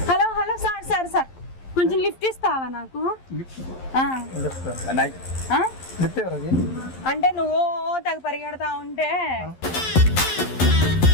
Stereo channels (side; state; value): right; late; 11 ms